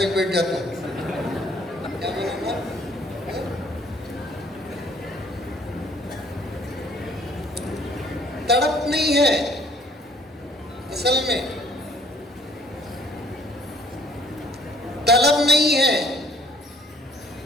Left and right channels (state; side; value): normal; both; correlation 0.59